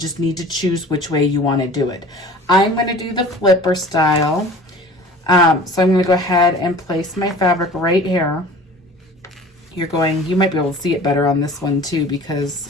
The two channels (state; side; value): normal; both; correlation 0.44